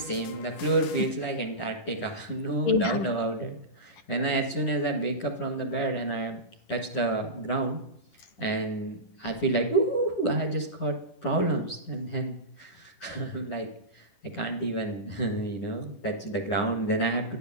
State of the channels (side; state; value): right; late; 10 ms